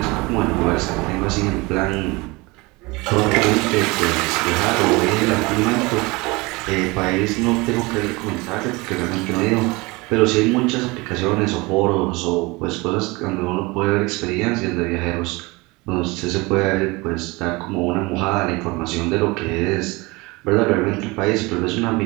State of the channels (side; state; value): left; quieter; 24.3 dB